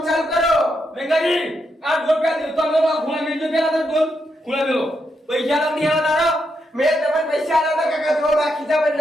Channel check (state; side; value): normal; both; correlation 0.81